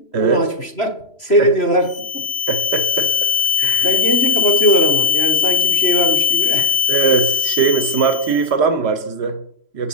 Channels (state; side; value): late; right; 3.0 ms